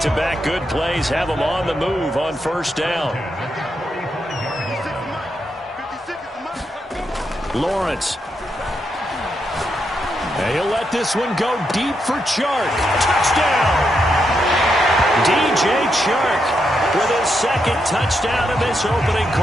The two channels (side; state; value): both; normal; correlation 0.82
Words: good plays have them on the move on first down. Lawrence. And he'll let this one go deep for Chark. Touchdown! DJ Chark with his second touchdown in this opening